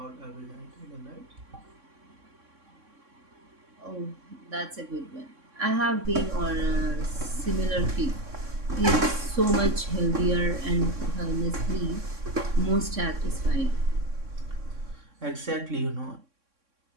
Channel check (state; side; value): late; left; 3.6 ms